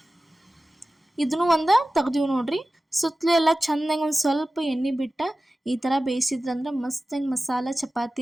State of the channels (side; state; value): both; normal; correlation 0.96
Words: ಇದನ್ನು ಒಂದು ತೆಗ್ದೀವಿ ನೋಡ್ರಿ. ಸುತ್ತಲೂ ಎಲ್ಲ ಚೆಂದಂಗೆ ಒಂದು ಸ್ವಲ್ಪ ಎಣ್ಣೆ ಬಿಟ್ಟು ಈ ಥರ ಬೇಯಿಸಿದ್ರಂದ್ರೆ ಮಸ್ತಂಗೆ ಮಸಾಲ